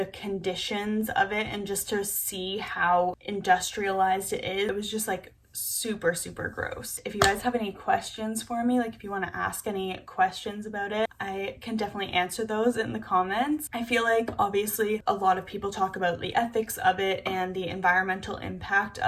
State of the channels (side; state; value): both; identical; correlation 1.00